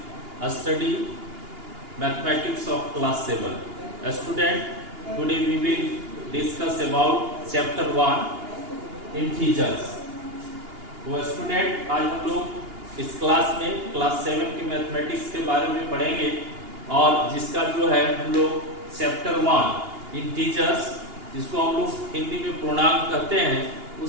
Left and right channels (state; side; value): late; left; 2.8 ms